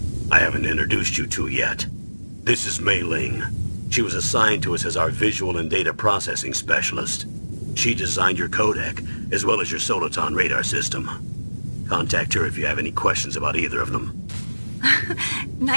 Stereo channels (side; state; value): both; inverted; correlation -1.00